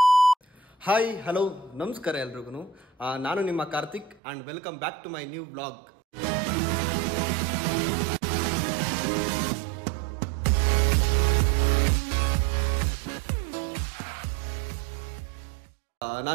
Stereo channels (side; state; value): left; drops out; at 4.2 s